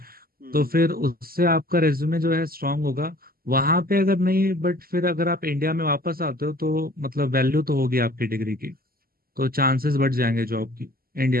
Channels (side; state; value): left; late; 0.43 ms